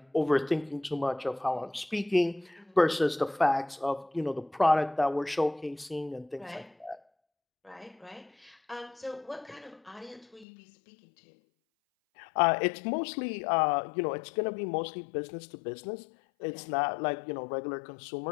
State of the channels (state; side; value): drops out; right; at 10.5 s